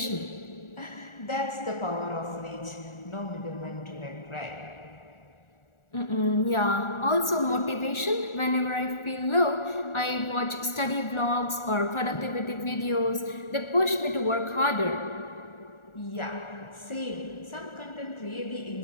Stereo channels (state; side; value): late; right; 1.4 ms